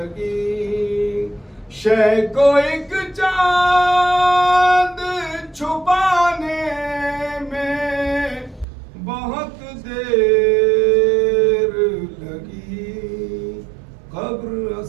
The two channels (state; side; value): drops out; left; at 8.7 s